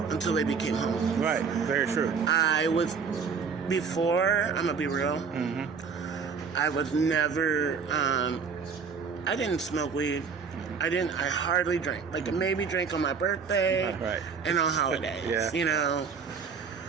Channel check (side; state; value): left; quieter; 5.8 dB